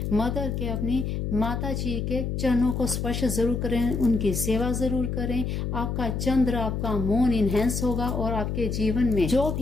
मदर के, अपनी माता जी के चरणों को स्पर्श जरूर करें, उनकी सेवा जरूर करें। आपका चंद्र, आपका मून इनहेंस होगा और आपके जीवन में जो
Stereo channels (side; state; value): left; noise; hum, 2 dB below the sound